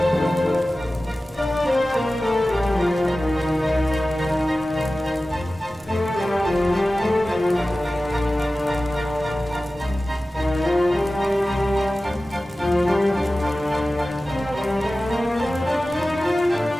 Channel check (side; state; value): both; normal; correlation 0.96